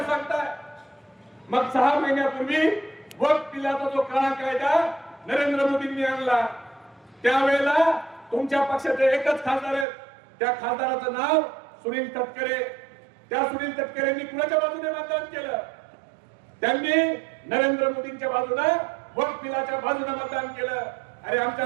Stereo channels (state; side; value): drops out; left; at 9.9 s